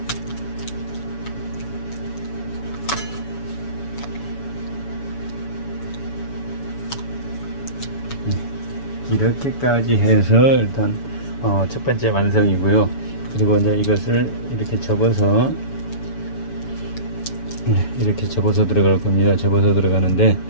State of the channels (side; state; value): right; late; 7.1 ms